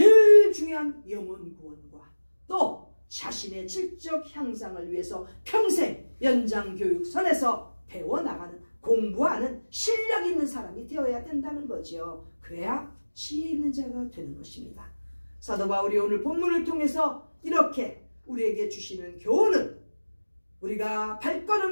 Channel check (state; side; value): inverted; both; correlation -1.00